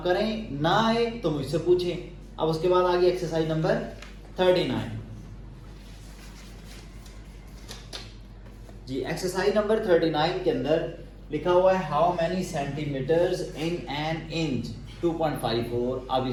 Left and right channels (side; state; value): both; identical; correlation 1.00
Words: करें, ना आए तो मुझसे पूछें। अब उसके बाद आ गई exercise number 39 ji. Exercise number 39 के अंदर लिखा हुआ है how many centimetres in an inch 2.54। अब